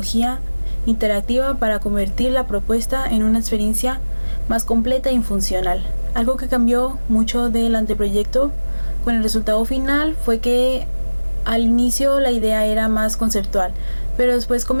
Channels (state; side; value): inverted; both; correlation -1.00